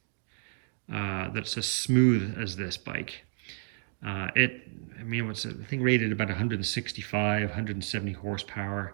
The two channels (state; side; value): silent; left; digital silence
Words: that's as smooth as this bike. I mean, what's it? I think rated about 165, 170 horsepower.